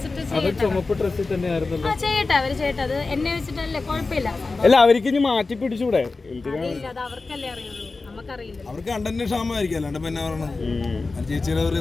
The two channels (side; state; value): right; quieter; 3.8 dB